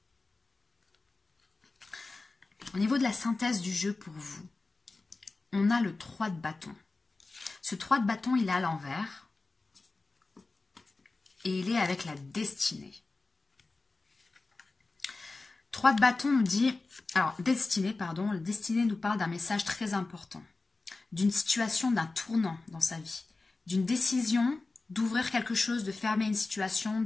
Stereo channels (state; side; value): quieter; right; 3.5 dB